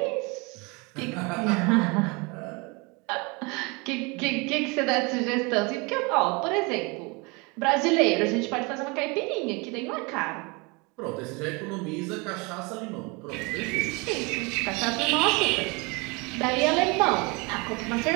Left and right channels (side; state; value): left; quieter; 28.2 dB